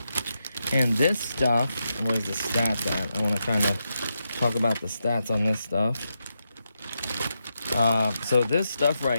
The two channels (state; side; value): inverted; both; correlation -0.85